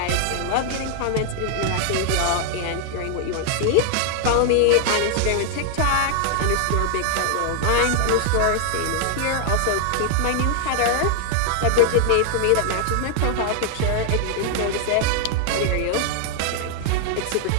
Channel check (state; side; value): different; both; correlation 0.00